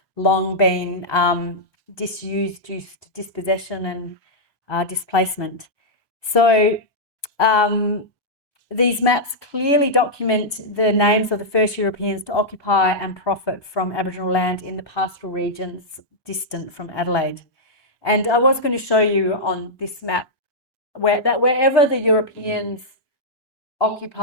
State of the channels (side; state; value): right; late; 1.2 ms